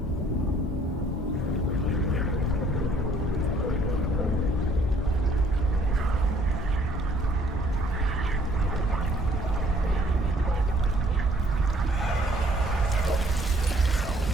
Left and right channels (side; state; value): both; normal; correlation 0.61